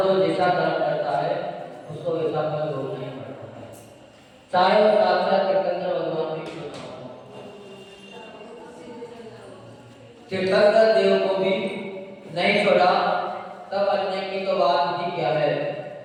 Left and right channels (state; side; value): identical; both; correlation 1.00